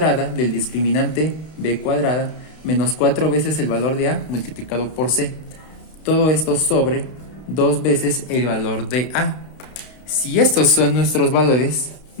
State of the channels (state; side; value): late; right; 32 ms